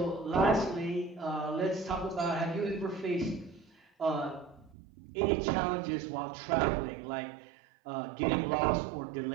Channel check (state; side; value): drops out; left; at 4.8 s